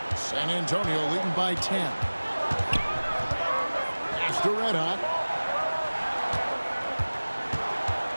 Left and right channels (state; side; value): inverted; both; correlation -1.00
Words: San Antonio leading by 10. Pass to Red Hot.